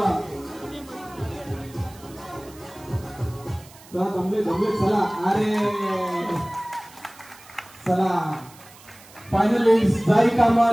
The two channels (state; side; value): noise; right; hiss, 22 dB below the sound